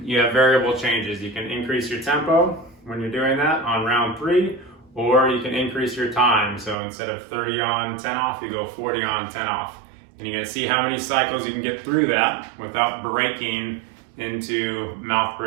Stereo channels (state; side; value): drops out; left; at 6.8 s